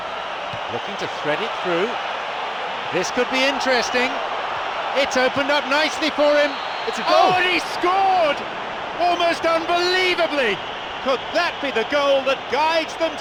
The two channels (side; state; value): both; identical; correlation 1.00